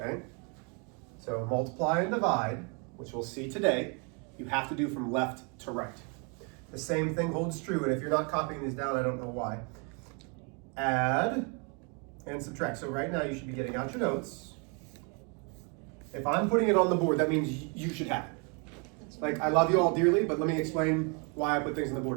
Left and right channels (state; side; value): quieter; left; 35.0 dB